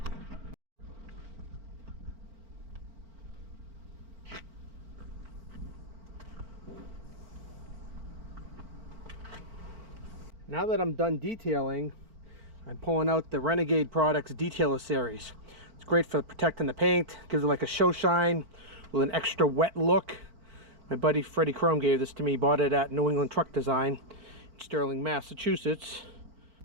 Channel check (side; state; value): left; late; 4.4 ms